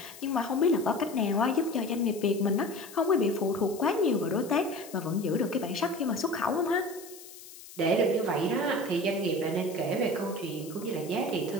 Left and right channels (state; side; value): noise; left; hiss, 17 dB below the sound